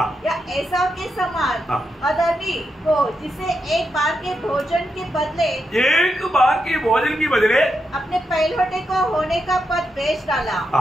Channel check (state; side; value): normal; both; correlation 0.84